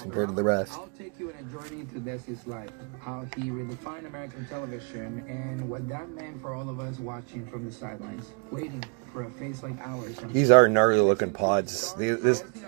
compared to the rest. I'll take you on a journey to Desi's life, how he redefined American television, and what that meant for all of us watching from the sidelines, waiting for a face like ours. These are gnarly looking pods. These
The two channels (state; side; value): quieter; left; 37.1 dB